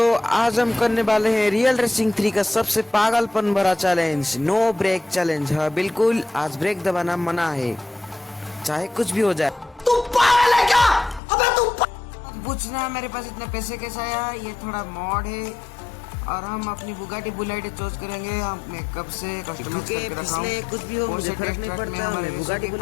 आज हम करने वाले हैं रियल रेसिंग 3 का सबसे पागलपन भरा चैलेंज, नो ब्रेक चैलेंज। हाँ बिल्कुल, आज ब्रेक दबाना मना है, चाहे कुछ भी हो जाए। तू पागल है क्या? अबे तू पूछना मेरे पास इतने पैसे कैसे आया? ये थोड़ा मॉड है और हम अपनी बुगाटी बुलेट चूज करेंगे। हम कब से कस्टमर करके रखा हूं, कुछ भी हो मुझे फर्क नहीं पड़ता। मैं बुगाटी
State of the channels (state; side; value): drops out; right; at 11.2 s